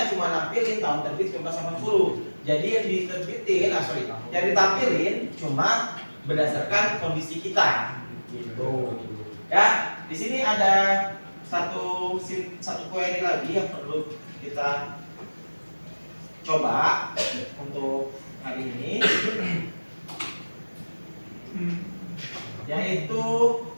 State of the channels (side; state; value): both; inverted; correlation -1.00